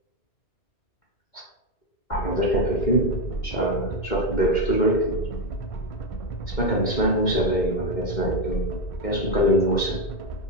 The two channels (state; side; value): late; right; 2.1 ms